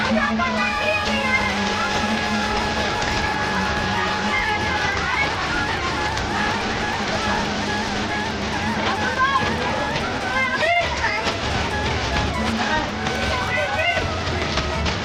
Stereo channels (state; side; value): identical; both; correlation 1.00